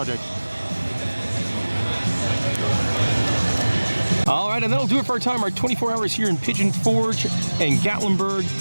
All right, and that'll do it for our time. Our 24 hours here in Pigeon Forge and Gatlinburg.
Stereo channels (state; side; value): inverted; both; correlation -1.00